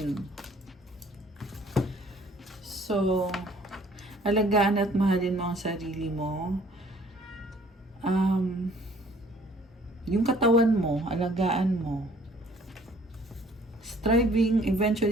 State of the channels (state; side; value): normal; both; correlation 0.57